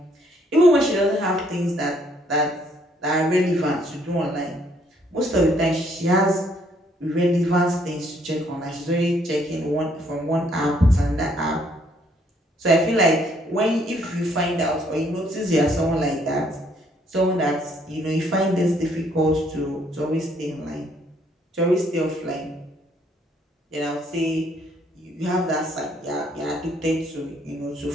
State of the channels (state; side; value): normal; both; correlation 0.67